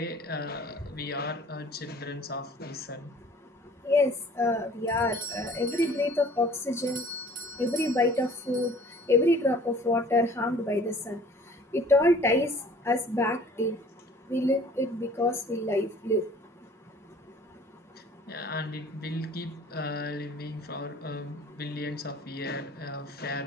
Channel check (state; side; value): normal; both; correlation 0.50